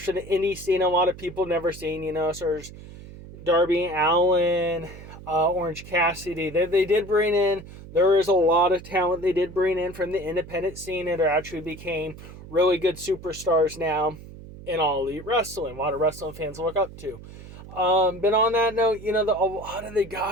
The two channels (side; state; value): right; noise; hum, 16 dB below the sound